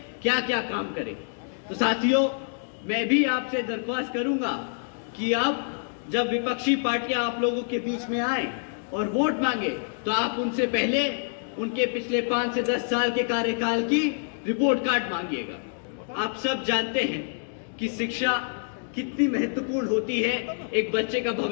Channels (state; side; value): silent; right; digital silence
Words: क्या क्या काम करे। तो साथियों, मैं भी आपसे दरख्वास्त करूंगा कि आप जब विपक्षी पार्टियां आप लोगों के बीच में आए और वोट मांगे तो आप उनसे पहले उनके पिछले 5 से 10 साल के कार्यकाल की रिपोर्ट कार्ड मांगिएगा। आप सब जानते हैं कि शिक्षा कितनी महत्वपूर्ण होती है एक बच्चे का